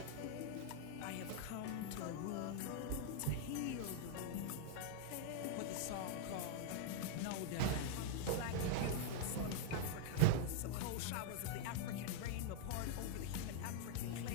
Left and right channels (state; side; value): different; both; correlation 0.00